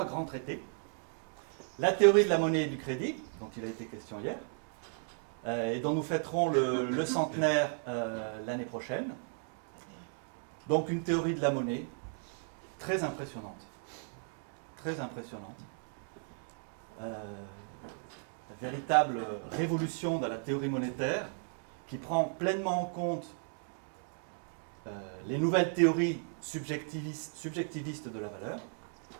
grands traités. La théorie de la monnaie et du crédit, dont il a été question hier, et dont nous fêterons le centenaire l'année prochaine. Donc une théorie de la monnaie très impressionnante. Très impressionnante. La véritable révolution de la théorie monétaire qui prend pleinement en compte les nouvelles théories subjectivistes de la valeur,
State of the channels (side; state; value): left; silent; 54 dB below the other